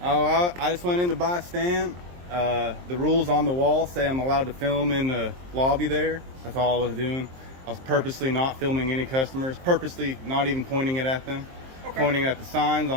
Oh, I just went in to buy a stamp. The rules on the wall say I'm allowed to film in the lobby there. That's all I was doing. I was purposely not filming any customers, purposely not even pointing it at them, pointing it at the signs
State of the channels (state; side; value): late; left; 23 ms